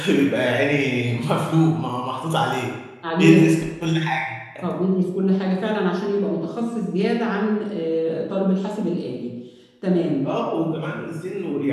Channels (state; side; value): identical; both; correlation 1.00